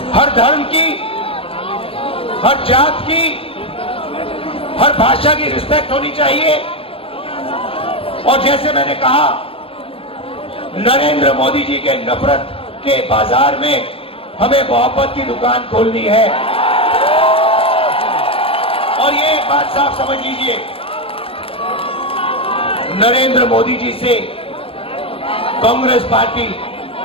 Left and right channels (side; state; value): right; late; 0.27 ms